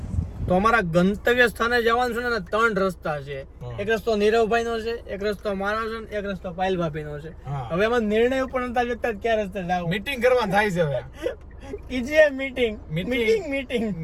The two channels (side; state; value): both; identical; correlation 1.00